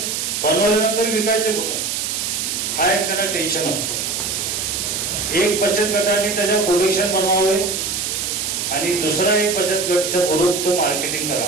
बनवल्यानंतर विकायचे कुठं हा एक त्यांना टेन्शन असतो. एक बचत गटाने त्याच्या प्रोडक्शन बनवावे आणि दुसरा एक बचत गटचा ग्रुप तो मार्केटिंग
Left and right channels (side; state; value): right; noise; hiss, 2 dB below the sound